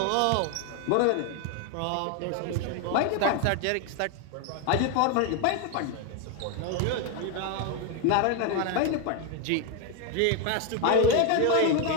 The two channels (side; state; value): both; different; correlation 0.02